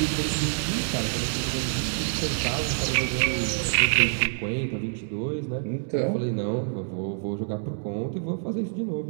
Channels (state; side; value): silent; left; digital silence